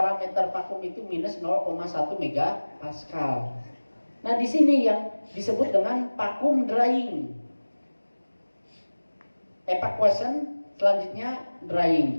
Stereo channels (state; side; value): inverted; both; correlation -1.00